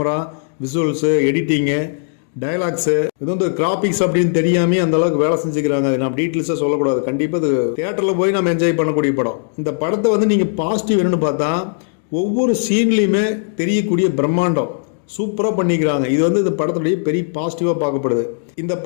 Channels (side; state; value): right; silent; digital silence